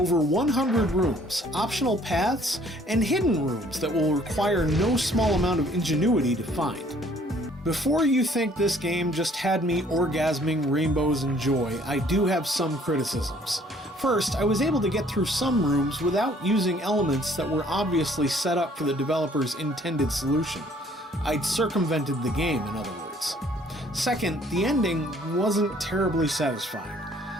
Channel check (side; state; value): both; normal; correlation 0.59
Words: 100 rooms, optional paths, and hidden rooms that will require no small amount of ingenuity to find. Before you think this game just had me orgasming rainbows and joy, I do have some criticisms. First, I was able to get through some rooms without using elements that were obviously set up for the developer's intended solution. I'd circumvented the game, in other words. Second, the ending wasn't terribly satisfying.